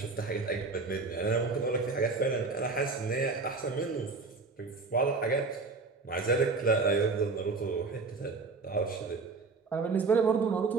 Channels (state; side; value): quieter; left; 4.1 dB